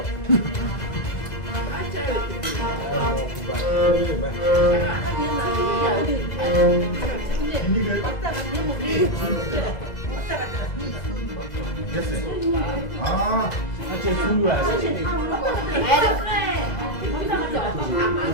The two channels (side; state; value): right; late; 2.0 ms